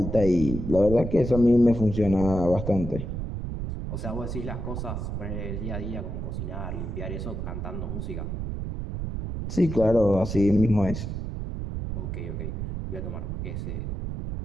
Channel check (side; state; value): right; noise; rumble, 5 dB below the sound